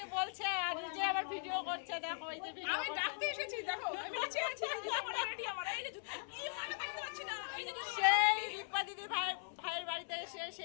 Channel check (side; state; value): right; silent; 51 dB below the other